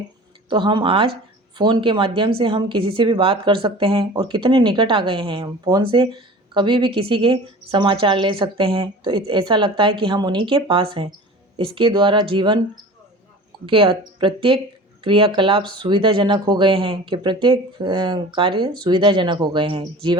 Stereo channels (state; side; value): normal; both; correlation 0.40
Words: तो हम आज फ़ोन के माध्यम से हम किसी से भी बात कर सकते हैं और कितने निकट आ गए हैं। हम फ़ोन से कभी भी किसी के समाचार ले सकते हैं, तो ऐसा लगता है कि हम उन्हीं के पास हैं। इसके द्वारा जीवन के प्रत्येक क्रियाकलाप सुविधाजनक हो गए हैं कि प्रत्येक कार्य सुविधाजनक हो गए हैं।